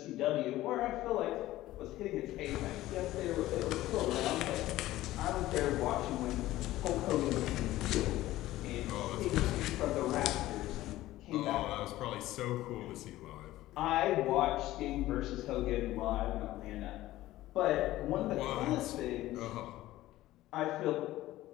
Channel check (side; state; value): right; quieter; 15.9 dB